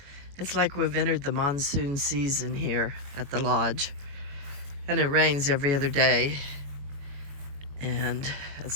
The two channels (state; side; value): late; left; 21 ms